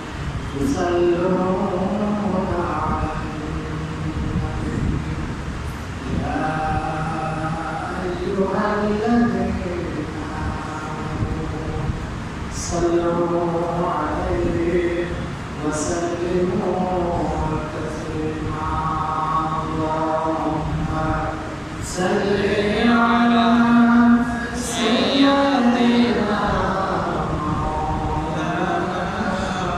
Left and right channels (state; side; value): identical; both; correlation 1.00